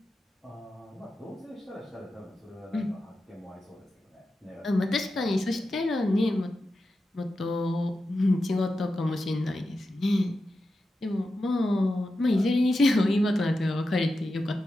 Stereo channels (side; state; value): both; normal; correlation 0.90